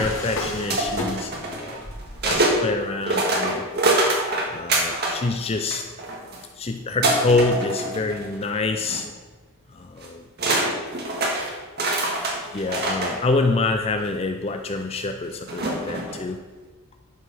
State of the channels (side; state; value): both; normal; correlation 0.22